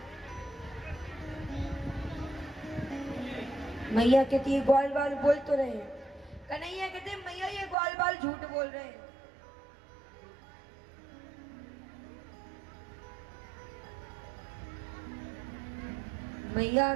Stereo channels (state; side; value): drops out; left; at 7.8 s